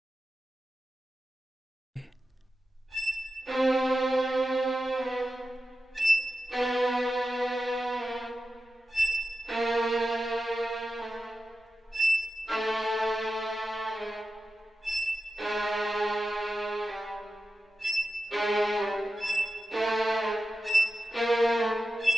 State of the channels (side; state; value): both; normal; correlation 0.92